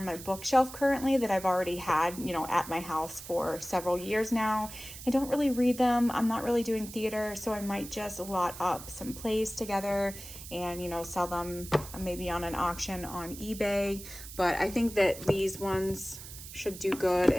my bookshelf currently that I've already had, you know, at my house for several years now. I don't really read them. I'm not really doing theater, so I might just lot up some plays together and, you know, sell them maybe on an auction on eBay. But I think that these ones should do good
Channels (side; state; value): right; noise; hiss, 13 dB below the sound